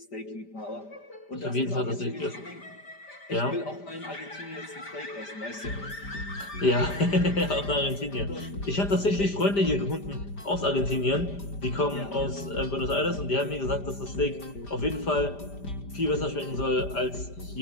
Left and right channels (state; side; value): late; right; 5.0 ms